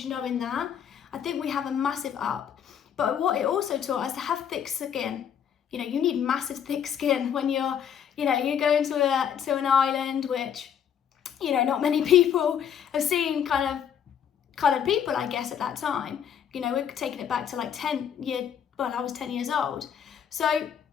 knowing that, I think we have a massive up. But what it also taught us to have thick skin. You need massive thick skin when you're going to an island, which, not many people have seen kind of coloured people, I guess, at that time. We're taking it back to like I was 10 years old. So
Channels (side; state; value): right; quieter; 8.6 dB